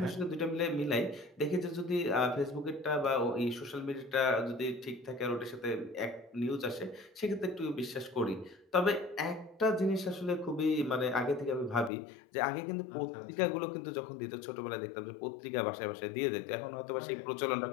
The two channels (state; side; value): drops out; right; at 11.9 s